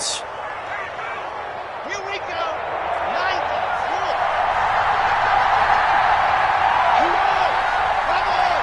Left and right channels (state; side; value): identical; both; correlation 1.00